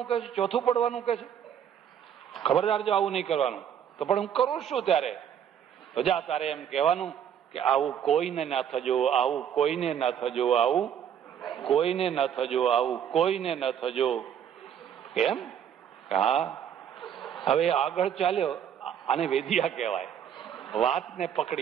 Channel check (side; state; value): left; quieter; 8.9 dB